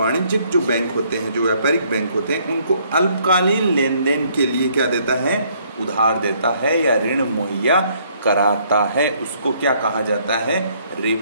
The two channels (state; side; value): inverted; both; correlation -0.65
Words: जो बैंक होते हैं, जो व्यापारिक बैंक होते हैं, उनको अल्पकालीन लेन देन के लिए क्या देता है? उधार देता है या ऋण मुहैया कराता है। उसको क्या कहा जाता है?